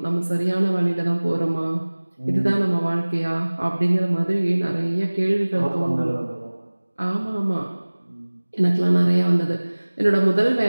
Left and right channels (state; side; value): inverted; both; correlation -1.00